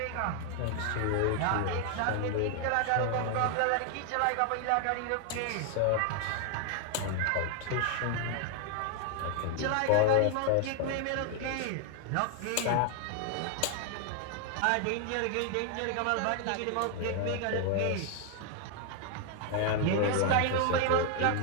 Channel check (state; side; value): different; both; correlation 0.00